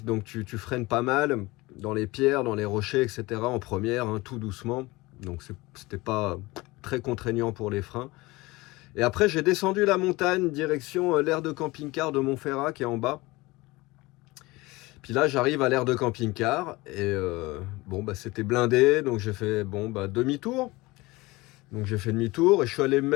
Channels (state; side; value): quieter; right; 21.7 dB